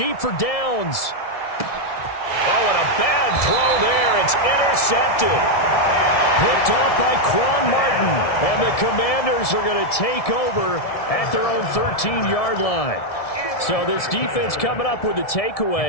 for Downs. Oh, and a bad throw there. It's intercepted. Picked off by Quan Martin. And the Commanders are going to take over at their own 13-yard line. So this defense coming up with a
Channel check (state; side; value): late; right; 1.7 ms